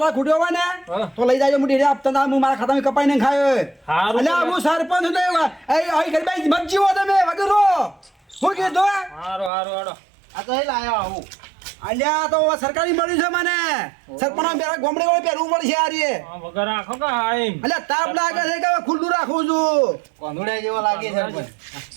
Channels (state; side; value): drops out; left; at 9.5 s